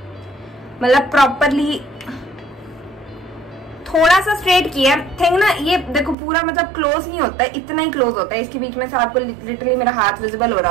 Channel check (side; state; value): left; drops out; at 6.2 s